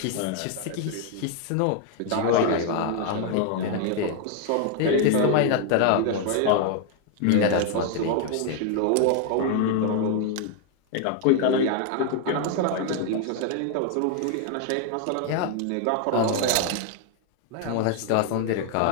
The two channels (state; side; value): different; both; correlation 0.00